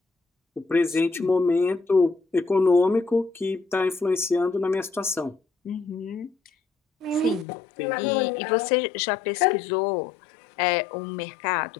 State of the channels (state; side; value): drops out; right; at 7.5 s